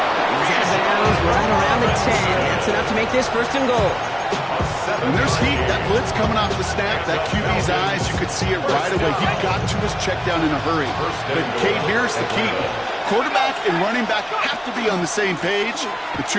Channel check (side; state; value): both; identical; correlation 1.00